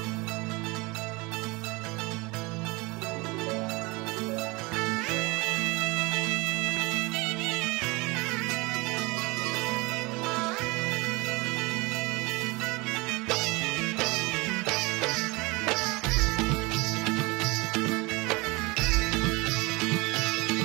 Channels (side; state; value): left; quieter; 25.0 dB